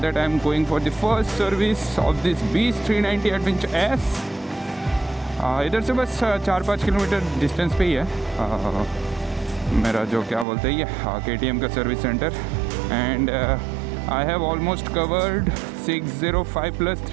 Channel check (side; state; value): left; drops out; at 10.5 s